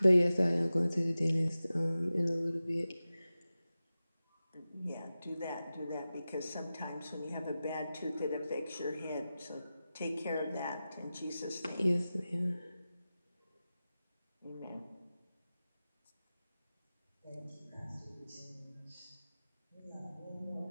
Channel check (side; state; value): both; inverted; correlation -0.95